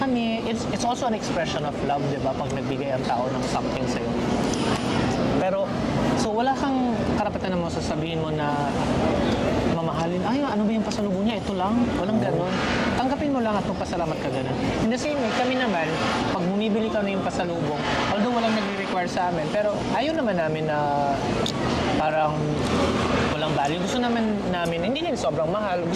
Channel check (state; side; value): identical; both; correlation 1.00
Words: kami. It's also an expression of love, di ba? Pag nagbigay ang tao ng something sa'yo. Pero, so wala kang karapatan na mo sasabihin mo na mamahalin, ay, ano ba yung pasalubong niya? Ito lang. Walang ganun. Tanggapin mo lang at magpasalamat ka ganun. In the same way, kami naman, pag bumibili ka na yung pasalubong, although walang nagre-require sa amin, pero ayaw naman namin na parang walang value. Gusto namin, hindi din sobrang mahal.